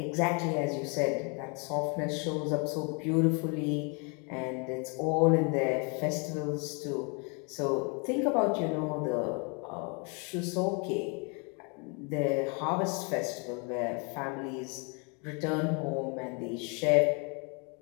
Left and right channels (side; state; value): right; quieter; 34.5 dB